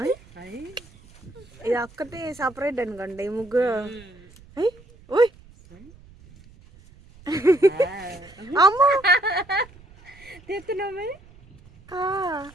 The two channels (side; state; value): right; noise; rumble, 24 dB below the sound